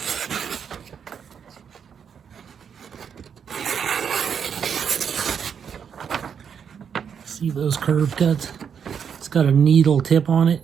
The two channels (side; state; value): left; quieter; 7.3 dB